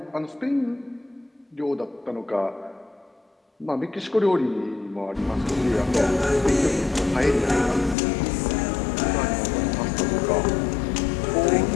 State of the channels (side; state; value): right; drops out; at 8.0 s